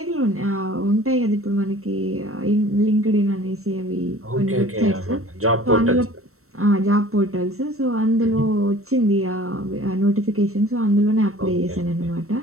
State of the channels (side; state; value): left; late; 0.63 ms